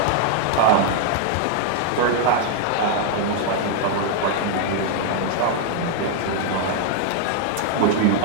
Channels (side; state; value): both; different; correlation 0.00